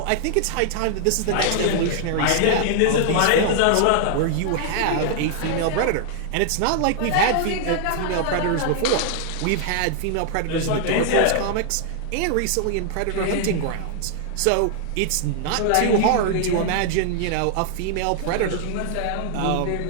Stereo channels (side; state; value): both; different; correlation 0.00